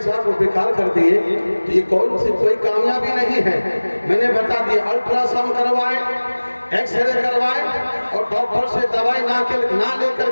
کو بیکار کر دیے تو یہ کوئی کامیابی نہیں ہے میں نے بتا دیا الٹرا ساؤنڈ کروائے ایکس رے کروائے اور ڈاکٹر سے دوائی نہ لے کر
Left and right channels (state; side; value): inverted; both; correlation -1.00